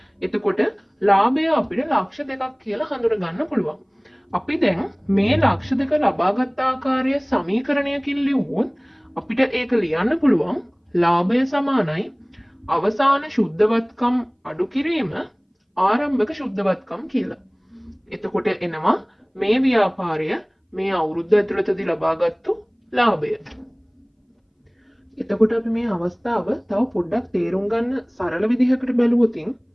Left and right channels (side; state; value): both; identical; correlation 1.00